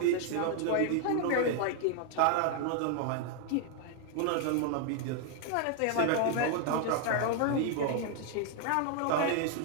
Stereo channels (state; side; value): different; both; correlation 0.00